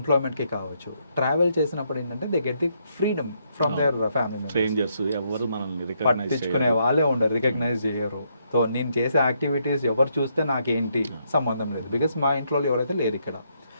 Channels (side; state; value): both; inverted; correlation -0.76